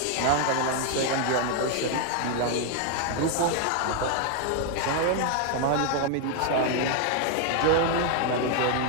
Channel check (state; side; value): different; both; correlation 0.00